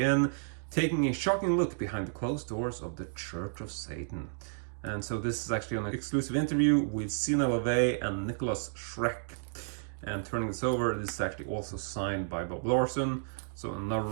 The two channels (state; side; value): silent; left; digital silence